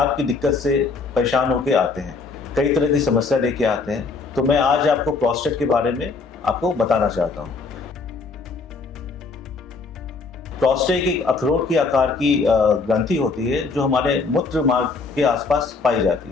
की दिक्कत से परेशान होकर आते हैं, कई तरह की समस्या लेके आते हैं। तो मैं आज आपको प्रोस्टेट के बारे में आपको बताना चाहता हूँ। प्रोस्टेट एक अखरोट के आकार की ग्रंथि होती है जो हमारे मूत्र मार्ग के आसपास पाई जाती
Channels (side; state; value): right; quieter; 4.3 dB